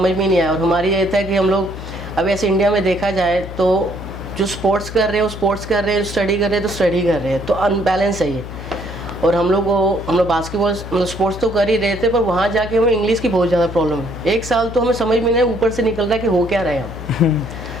में नहीं आया। और हमारी ये था कि हम लोग अब ऐसे इंडिया में देखा जाए तो जो स्पोर्ट्स कर रहे हैं वो स्पोर्ट्स कर रहे हैं, स्टडी कर रहे हैं तो स्टडी कर रहे हैं, तो अनबैलेंस है ये। और हम लोग बास्केटबॉल मतलब स्पोर्ट्स तो कर ही रहे थे, पर वहाँ जाके हमें इंग्लिश की बहुत ज़्यादा प्रॉब्लम है। 1 साल तो हमें समझ में नहीं, ऊपर से निकल रहा है कि हो क्या रहा है हम।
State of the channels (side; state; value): left; noise; hum, 11 dB below the sound